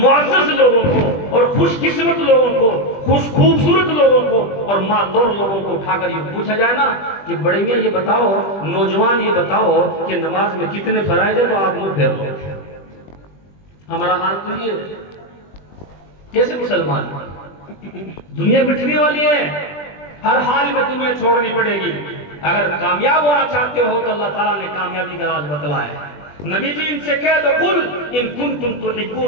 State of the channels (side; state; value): right; late; 20 ms